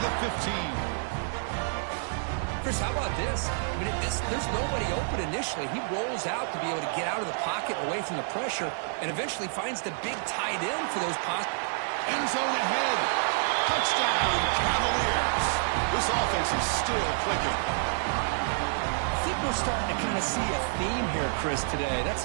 the 15. Chris, how about this? I mean, there's nobody open initially. He rolls out to be able to get out of the pocket away from the pressure and eventually finds the big tight end for those possible. End zone ahead. Touchdown, Cavaliers. This offense is still clicking. I think we're starting to kind of see a theme here, Chris, today.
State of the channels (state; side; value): silent; left; digital silence